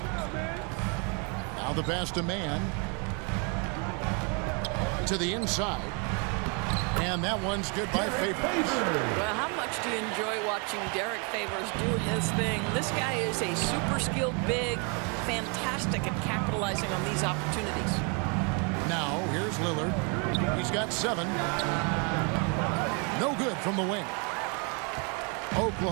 Now the pass to man. To the inside. And that one's good by Favors. Well, how much do you enjoy watching Derek Favors do his thing? This guy is a super skilled big, fantastic at capitalizing on these opportunities. Now, here's Lillard. He's got 7. No good from the wing.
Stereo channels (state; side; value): quieter; left; 34.8 dB